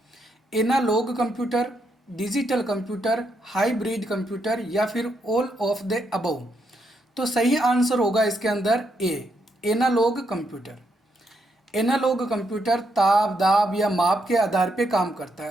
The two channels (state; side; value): normal; both; correlation 0.78